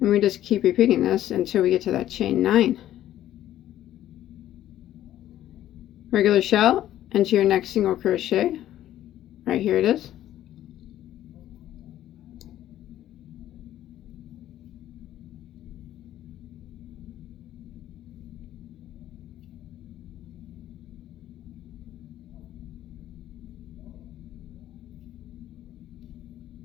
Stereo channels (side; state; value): right; quieter; 12.7 dB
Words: we just keep repeating this until we get to that chain 9. Regular shell into your next single crochet. Right here it is.